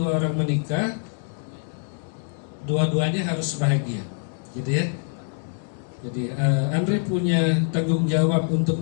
orang menikah, dua-duanya harus bahagia, gitu ya. Jadi Andre punya tanggung jawab untuk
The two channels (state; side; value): silent; right; 62 dB below the other